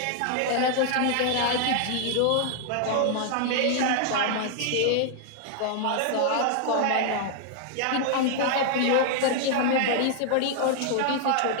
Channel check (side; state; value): both; different; correlation 0.00